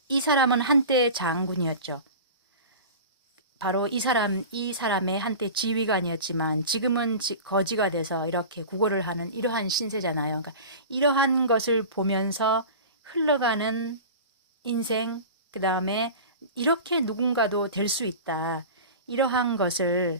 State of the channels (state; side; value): inverted; both; correlation -0.34